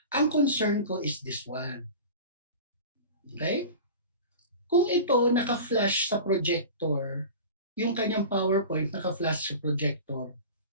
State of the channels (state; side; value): inverted; both; correlation -0.34